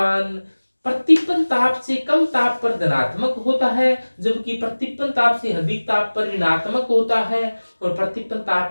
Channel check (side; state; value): both; inverted; correlation -1.00